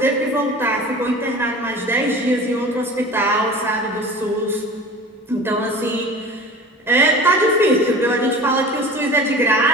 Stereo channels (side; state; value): both; normal; correlation 0.39